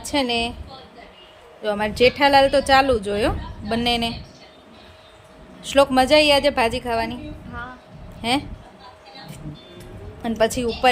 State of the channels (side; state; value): both; identical; correlation 1.00